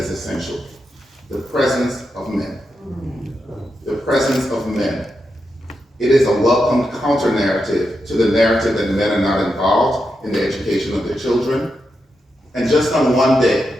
essential. The presence of men. The presence of men. It is a welcome counter-narrative to the narrative that men are not involved in the education of their children. And just on one day,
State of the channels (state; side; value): normal; both; correlation 0.86